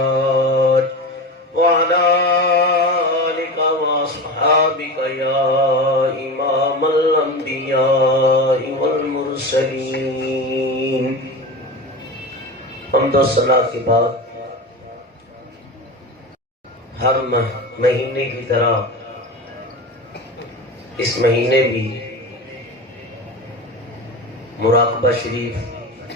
وعلى آلك وأصحابك يا إمام الأنبياء والمرسلين حمد و ثنا کے بعد ہر مہینے کی طرح اس مہینے بھی مراقبہ شریف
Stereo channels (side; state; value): both; normal; correlation 0.27